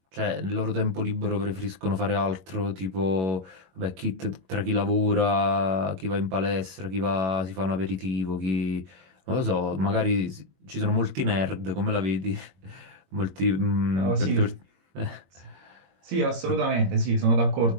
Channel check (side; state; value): left; late; 21 ms